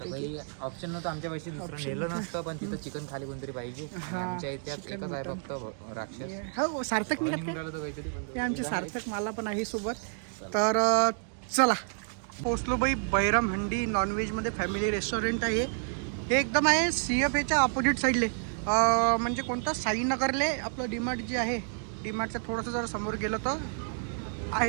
ऑप्शन नव्हतं आमच्या पैसे दुसरं नेलं नसतं, पण तिथं चिकन खाली कोणतरी पाहिजे. आमच्या इतिहास एकच आहे फक्त राक्षस. हो सार्थक हे आमचे सार्थक मला पण आहे सोबत. तर चला पोचलो भाई. बैरम हंडी नॉनव्हेजमध्ये फॅमिली रेस्टॉरंट आहे. हे एकदम आहे CFAच्या ऑपोजिट साईडले, म्हणजे कोणतं साईनगरले आपलं डीमार्ट जे आहे, डीमार्टच्या थोडंसं जर समोर गेलं तर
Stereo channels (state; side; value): silent; left; 58 dB below the other